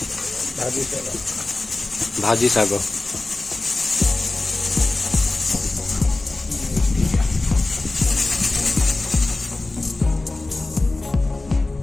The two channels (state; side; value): quieter; right; 3.1 dB